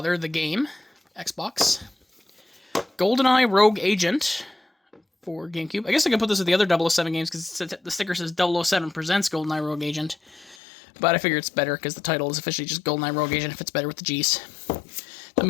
the game, Xbox. GoldenEye Rogue Agent for GameCube. I guess I could put this with the other 007 games because the sticker says 007 presents GoldenEye Rogue Agent. But I figure it's better because the title is officially just GoldenEye Rogue Agent if it's better with the G's. Then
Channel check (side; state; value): right; drops out; at 10.6 s